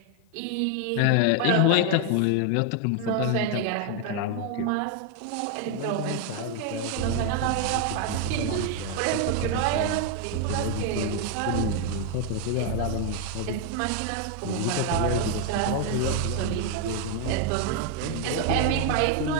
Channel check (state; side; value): different; both; correlation 0.01